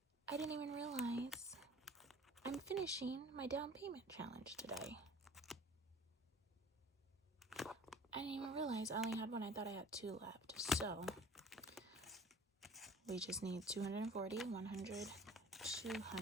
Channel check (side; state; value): both; normal; correlation 0.44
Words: I didn't even realize I'm finishing my down payment challenge today. I didn't even realize I only had one. I thought I had 2 left. So we just need 240, 100,